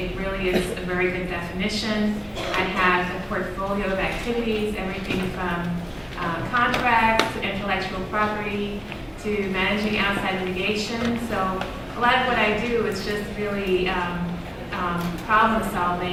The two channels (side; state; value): both; identical; correlation 1.00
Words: really is a very good definition. I have a portfolio of activities, everything from contracts to intellectual property to managing outside litigation. So a lot of what I do is just really problem